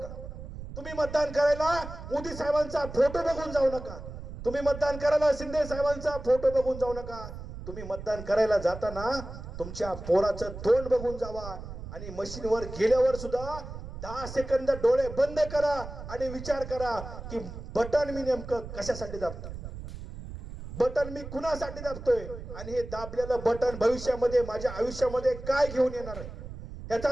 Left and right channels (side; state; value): right; noise; rumble, 11 dB below the sound